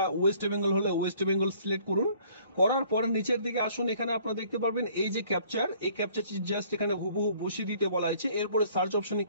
ওয়েস্ট বেঙ্গল হলে ওয়েস্ট বেঙ্গল সিলেক্ট করুন। করার পর নিচের দিকে আসুন, এখানে আপনারা দেখতে পারবেন এই যে ক্যাপচার, এই ক্যাপচারটি জাস্ট এখানে হুবহু বসিয়ে দিতে বলা হয়েছে। এরপরে সার্চ অপশনে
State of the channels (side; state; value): both; inverted; correlation -0.58